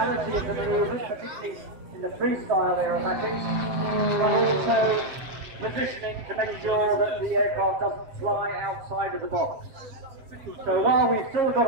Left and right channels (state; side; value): late; left; 7.7 ms